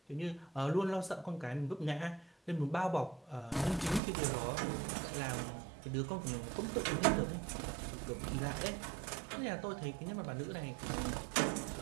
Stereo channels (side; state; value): left; drops out; at 4.0 s